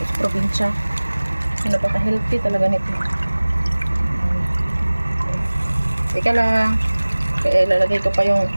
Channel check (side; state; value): both; inverted; correlation -1.00